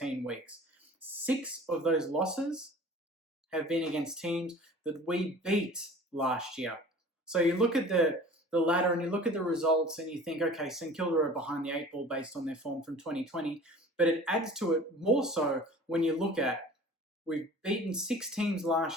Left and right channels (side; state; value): both; normal; correlation 0.44